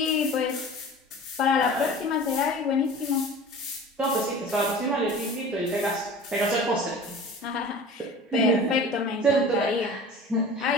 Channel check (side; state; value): both; normal; correlation 0.40